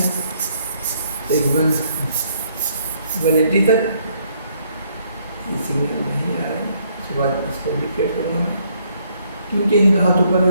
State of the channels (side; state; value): both; inverted; correlation -0.68